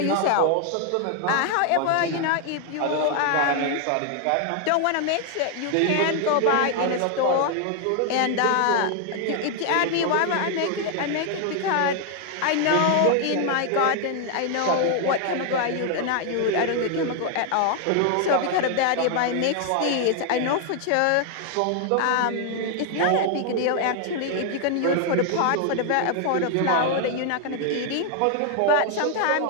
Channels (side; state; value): both; different; correlation 0.00